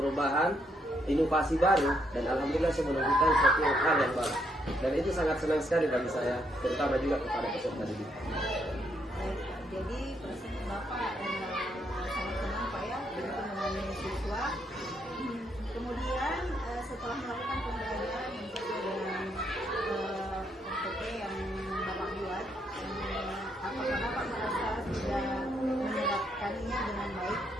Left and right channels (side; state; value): both; normal; correlation 0.75